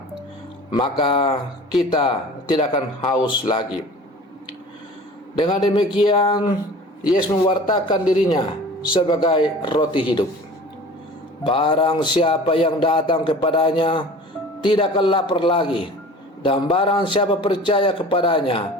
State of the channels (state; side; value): normal; both; correlation 0.42